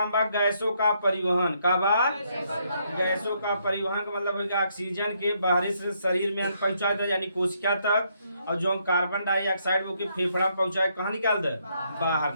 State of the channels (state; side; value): inverted; both; correlation -0.74